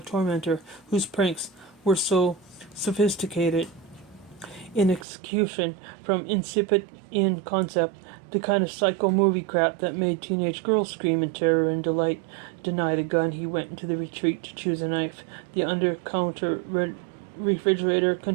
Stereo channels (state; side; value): drops out; left; at 5.1 s